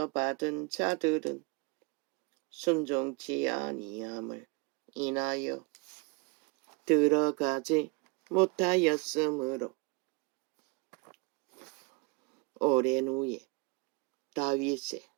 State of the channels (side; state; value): left; quieter; 30.3 dB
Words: 받은 자들은 순종치 아니함을 인하여 들어가지 못하였으므로 오랜 후에 다윗의